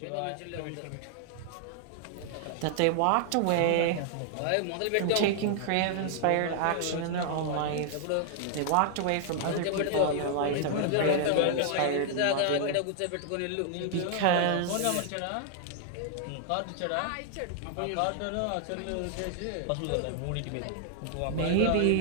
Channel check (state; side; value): different; both; correlation 0.00